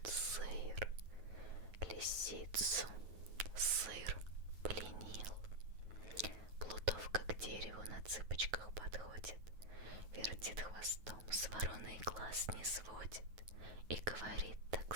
сыр. Лисицу сыр пленил. Плутовка к дереву на цыпочках подходит, вертит хвостом, с вороной глаз не сводит и говорит так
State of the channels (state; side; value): late; left; 9.3 ms